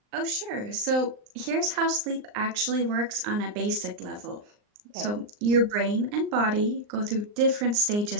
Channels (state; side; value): late; left; 39 ms